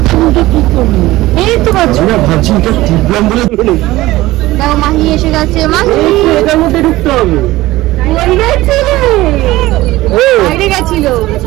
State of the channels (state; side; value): quieter; left; 17.7 dB